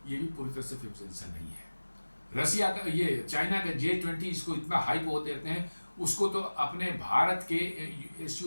ये भी पूरी तरह से 5th जनरेशन नहीं है। रसिया का ये चाइना का J-20 इसको इतना हाइप होते रहते हैं, उसको तो अपने भारत के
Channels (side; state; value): both; inverted; correlation -1.00